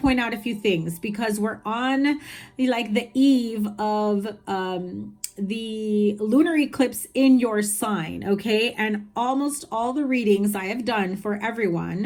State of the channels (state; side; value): identical; both; correlation 1.00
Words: out a few things because we're on like the eve of the lunar eclipse in your sign, okay? And almost all the readings I have done for